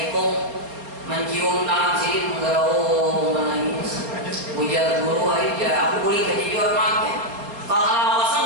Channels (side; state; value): left; late; 4.2 ms